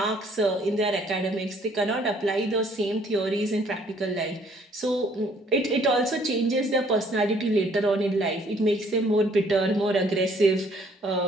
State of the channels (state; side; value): normal; both; correlation 0.62